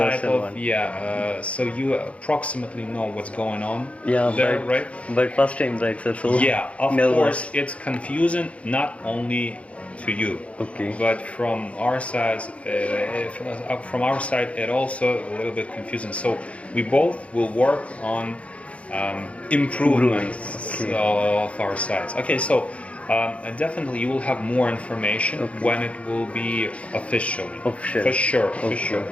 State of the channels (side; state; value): right; late; 0.063 ms